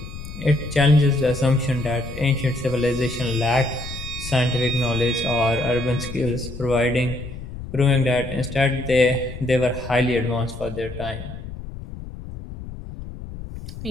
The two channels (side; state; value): left; noise; rumble, 11 dB below the sound